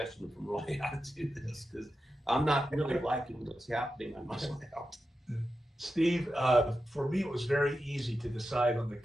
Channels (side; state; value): both; normal; correlation 0.90